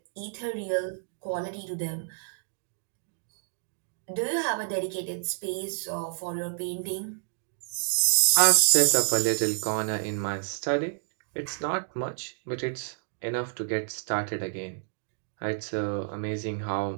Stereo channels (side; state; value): left; silent; digital silence